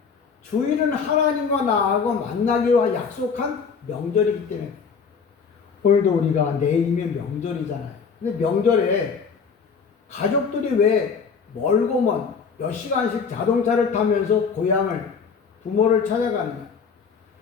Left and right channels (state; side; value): quieter; right; 5.8 dB